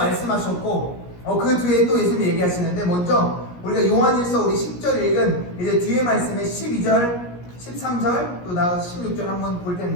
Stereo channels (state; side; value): late; right; 17 ms